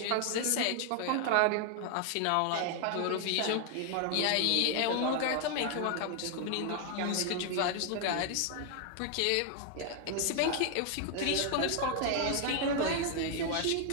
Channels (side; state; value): both; different; correlation 0.00